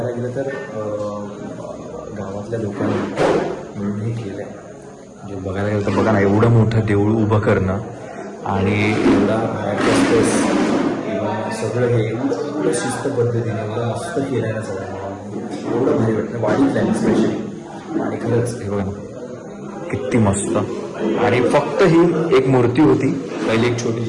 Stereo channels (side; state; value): both; identical; correlation 1.00